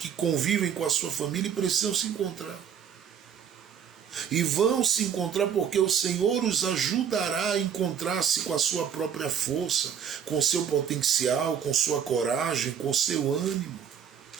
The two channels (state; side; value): quieter; left; 8.1 dB